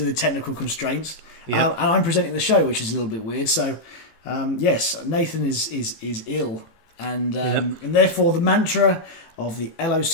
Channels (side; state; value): right; late; 18 ms